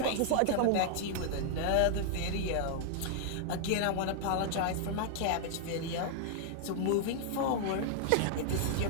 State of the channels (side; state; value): both; different; correlation 0.00